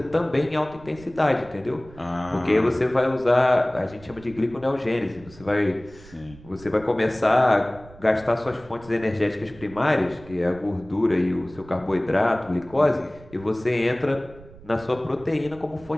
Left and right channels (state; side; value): noise; right; rumble, 21 dB below the sound